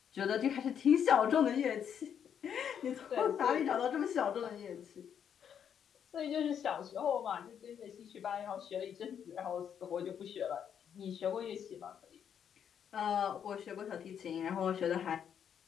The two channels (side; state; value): right; quieter; 8.4 dB